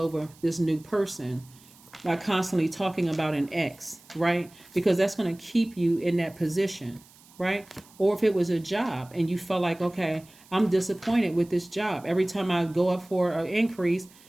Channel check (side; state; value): right; noise; hiss, 26 dB below the sound